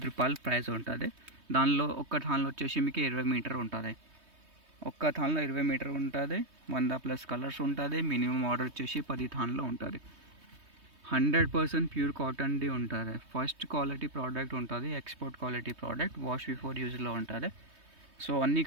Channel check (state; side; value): late; left; 3.2 ms